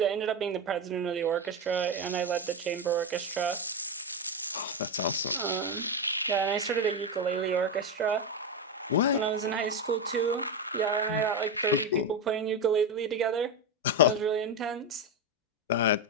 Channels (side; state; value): both; normal; correlation 0.11